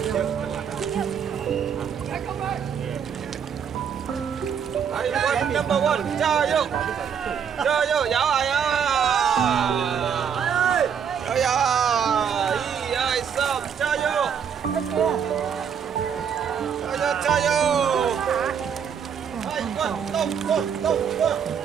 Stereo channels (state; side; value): quieter; left; 7.5 dB